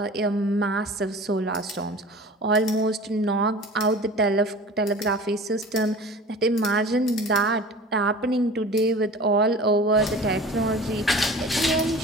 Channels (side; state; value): both; normal; correlation 0.40